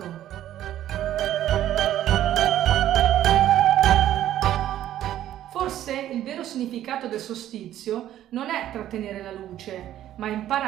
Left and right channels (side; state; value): left; quieter; 12.3 dB